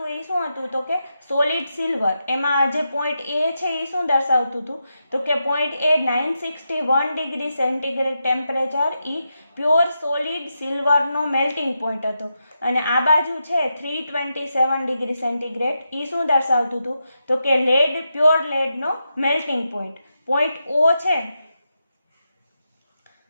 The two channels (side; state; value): both; inverted; correlation -0.86